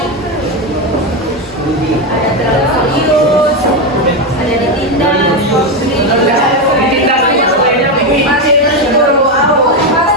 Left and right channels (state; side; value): normal; both; correlation 0.10